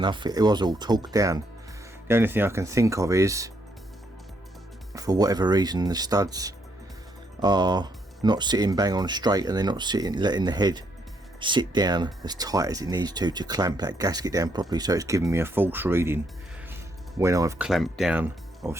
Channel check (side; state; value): both; normal; correlation 0.74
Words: It was all torqued down. The only thing I can think of is, for whatever reason, the studs are not sitting bang on straight and they're not letting the head sit down as tight as it needs to clamp that gasket down properly, so it's giving me a false reading when I've clamped down,